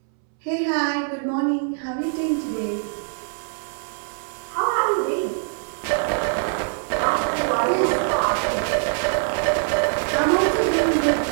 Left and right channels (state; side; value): silent; left; 63 dB below the other